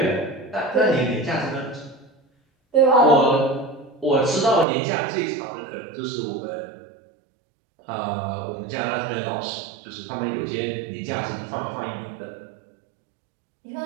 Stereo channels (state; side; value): drops out; left; at 4.7 s